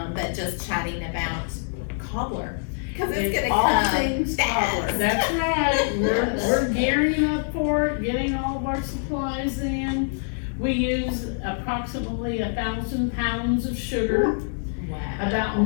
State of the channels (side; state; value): right; silent; digital silence